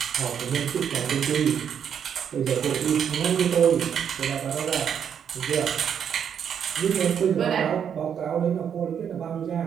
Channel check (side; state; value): left; quieter; 8.2 dB